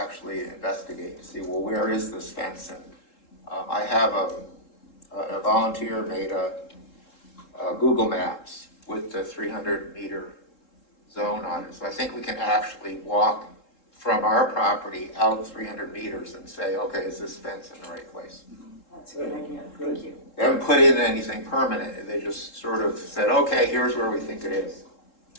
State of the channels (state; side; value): late; right; 3.7 ms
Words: investigate to see, well, where is this fence? And I have a volunteer made a Google Maps with the 300-meter zone on it. So I think we can actually walk from our property out 300 meters and say, okay, is this fence in the right place? That's a good idea, thank you. They haven't put in anything permanent. They just sort of said, okay, here's where we think it is.